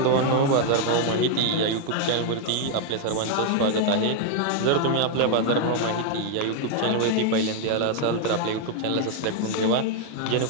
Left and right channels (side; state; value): both; different; correlation 0.00